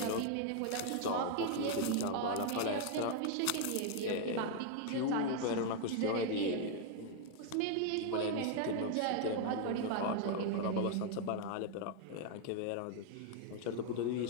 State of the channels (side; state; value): both; different; correlation 0.00